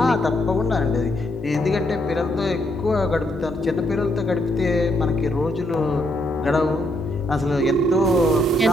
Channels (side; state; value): both; normal; correlation 0.75